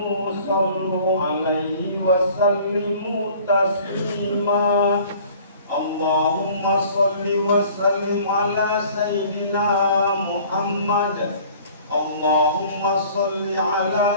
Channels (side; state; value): both; inverted; correlation -0.50